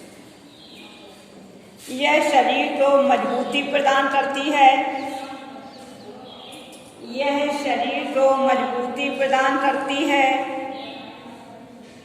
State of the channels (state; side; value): identical; both; correlation 1.00